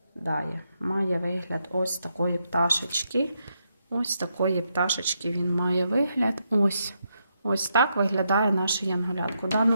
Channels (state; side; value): inverted; both; correlation -0.81